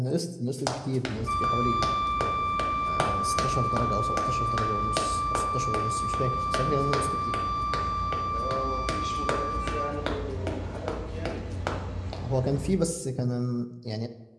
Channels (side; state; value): both; identical; correlation 1.00